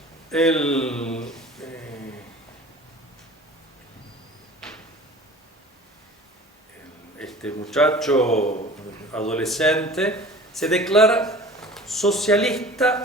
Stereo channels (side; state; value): both; normal; correlation 0.43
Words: este muchacho adolescente se declara